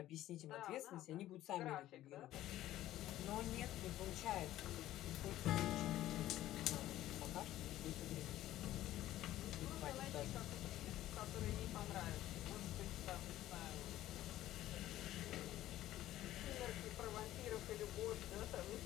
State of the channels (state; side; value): quieter; right; 14.1 dB